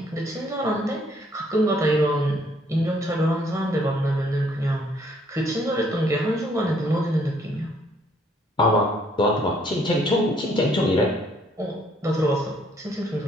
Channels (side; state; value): both; normal; correlation 0.65